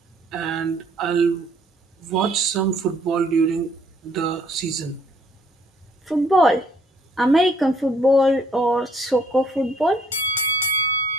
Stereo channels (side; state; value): both; normal; correlation 0.63